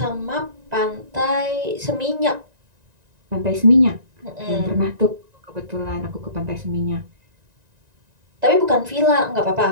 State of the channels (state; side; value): late; left; 1.9 ms